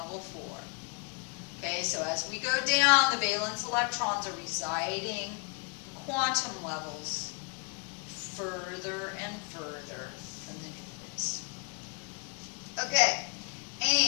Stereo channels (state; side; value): quieter; right; 35.1 dB